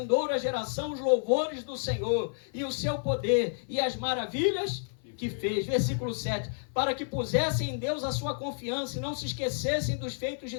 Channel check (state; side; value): silent; right; 56 dB below the other